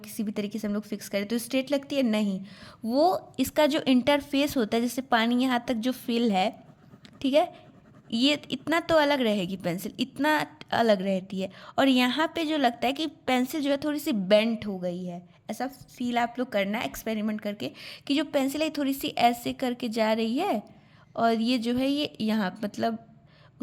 भी तरीके से हम लोग फिक्स करें तो स्ट्रेट लगती है? नहीं, वो इसका जो इंटरफेस होता है, जैसे पानी यहाँ तक जो फिल है, ठीक है, ये इतना तो अलग रहेगी, पेंसिल इतना अलग रहती है। और यहाँ पे जो लगता है कि पेंसिल जो है थोड़ी सी बेंट हो गई है, ऐसा फील आप लोग करना एक्सपेरिमेंट करके कि जो पेंसिल है थोड़ी सी ऐसे करके जा रही है, और ये जो है ये यहाँ मतलब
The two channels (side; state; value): both; identical; correlation 1.00